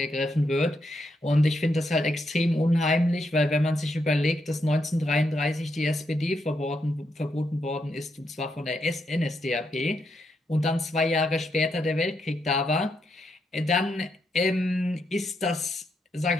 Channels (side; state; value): both; normal; correlation 0.80